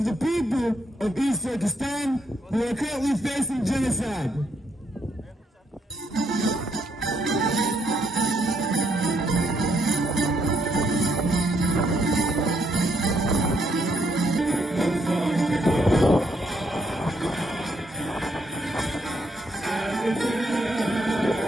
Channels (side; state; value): both; normal; correlation 0.74